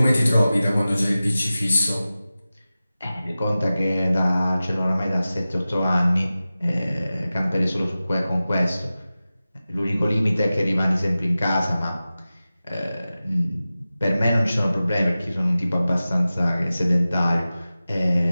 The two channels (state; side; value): inverted; both; correlation -0.96